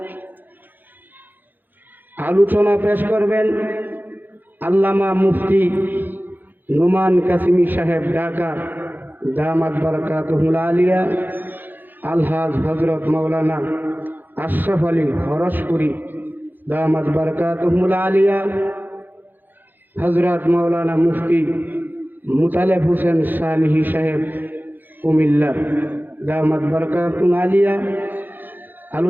আলোচনা পেশ করবেন। আল্লামা মুফতি নুমান কাসিমি সাহেব ঢাকা দামাত বারকাতুহুল আলিয়া, আলহাজ হজরত মৌলানা আশরাফ আলী হরসপুরি দামাত বারকাতুহুল আলিয়া, হজরত মৌলানা মুফতি মুতালেব হোসেন সালিহি সাহেব কুমিল্লা দামাত বরকাতুল আলিয়া।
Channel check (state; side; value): late; left; 0.089 ms